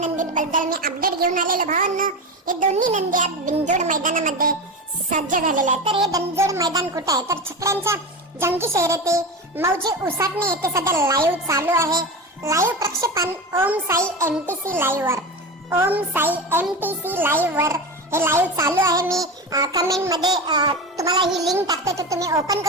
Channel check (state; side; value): normal; both; correlation 0.23